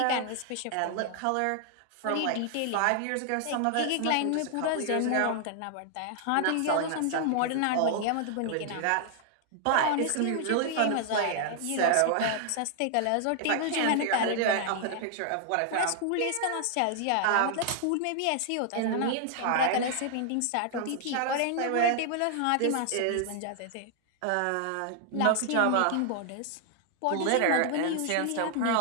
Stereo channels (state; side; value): different; both; correlation 0.00